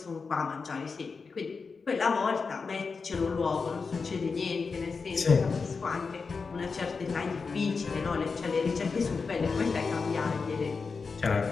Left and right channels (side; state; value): right; quieter; 4.8 dB